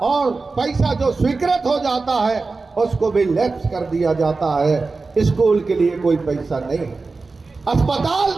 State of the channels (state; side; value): quieter; left; 4.0 dB